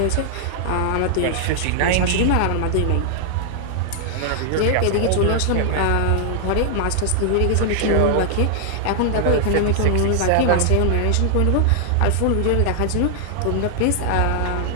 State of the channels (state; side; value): different; both; correlation 0.00